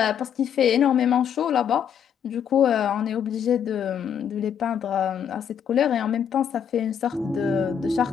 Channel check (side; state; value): right; quieter; 8.3 dB